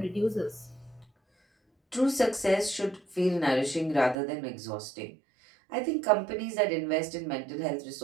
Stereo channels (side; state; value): left; drops out; at 4.2 s